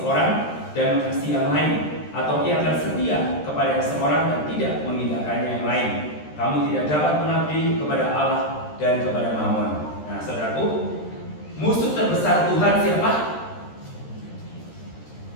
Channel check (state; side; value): late; right; 13 ms